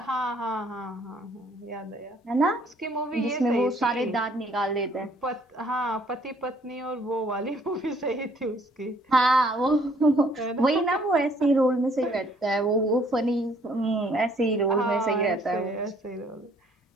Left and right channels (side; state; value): both; normal; correlation 0.62